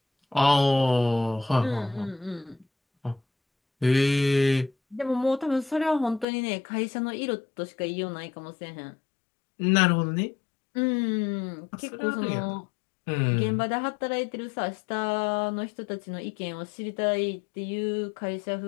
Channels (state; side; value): drops out; right; at 6.2 s